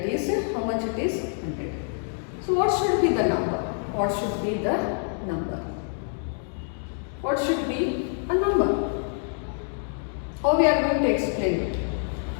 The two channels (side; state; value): right; silent; 61 dB below the other